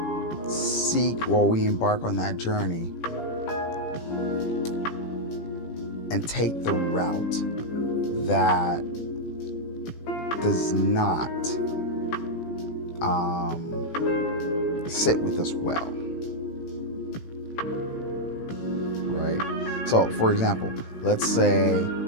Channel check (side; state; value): right; late; 18 ms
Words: seek or we embark on that journey and take the route that does not sit with us well, right? So, for example, let's say